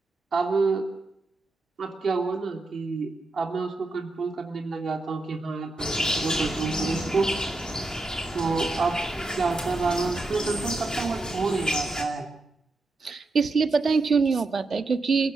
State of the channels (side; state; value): left; quieter; 3.2 dB